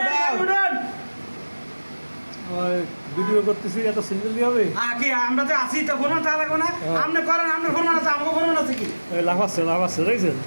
উপরে ভিডিও করতেছি, এত সিঙ্গেল দিয়ে হবে? কি আমরা তো আসি তো ফোন তা লাগবে না, আপনি করেন, আপনার ফোন আছে, আমাকে ফোন আছে কি লাভ আছে দেখছেন?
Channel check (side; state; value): both; inverted; correlation -1.00